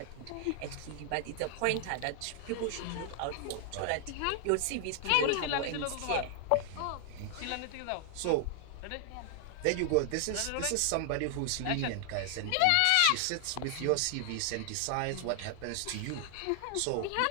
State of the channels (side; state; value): both; different; correlation 0.00